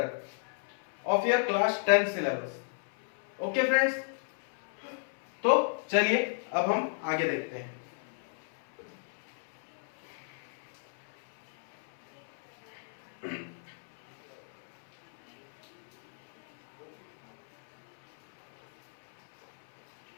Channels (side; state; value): right; silent; 56 dB below the other